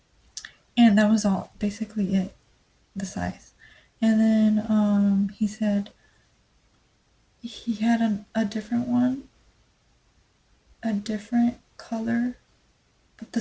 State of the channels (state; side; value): identical; both; correlation 1.00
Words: And that was all, basically it, the size. And then he said he had a different one, a different color, but